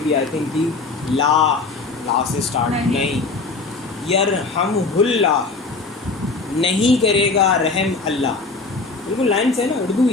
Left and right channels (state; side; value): quieter; right; 3.9 dB